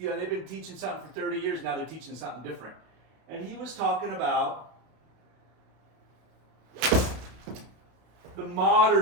been teaching something for 30 years, now they're teaching something different. And he was talking about the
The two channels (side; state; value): left; late; 32 ms